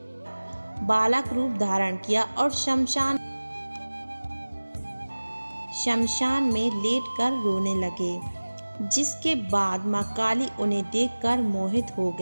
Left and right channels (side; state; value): both; inverted; correlation -1.00